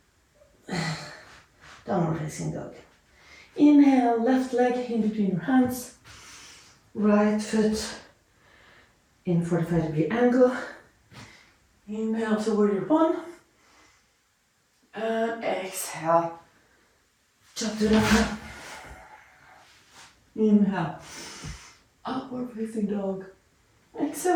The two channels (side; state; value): both; identical; correlation 1.00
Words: downward facing dog. Inhale, left leg in between your hands, right foot in 45-degree angle. Inhale to warrior one. And exhale, Chaturanga. Inhale, upward facing dog.